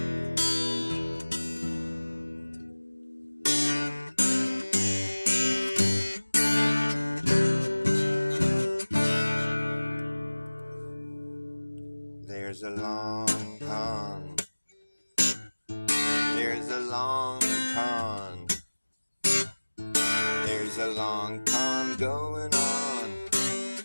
There's a long con. There's a long con. There's a long con going on.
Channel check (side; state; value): both; inverted; correlation -1.00